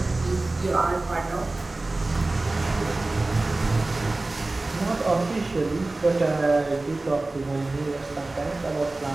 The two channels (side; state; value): left; quieter; 3.0 dB